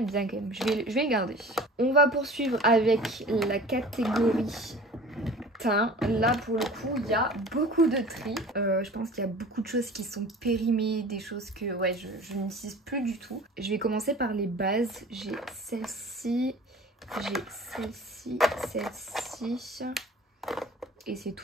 bien quand même, je vais le garder. On va poursuivre avec la catégorie teint. Là pour le coup il y a beaucoup de tri. Je pense qu'il y a beaucoup de choses qui sont périmées, des choses que ouais, je n'utilise plus du tout. Je vais commencer par les bases. J'ai celle-ci, celle-ci. Et c'est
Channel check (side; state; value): both; normal; correlation 0.42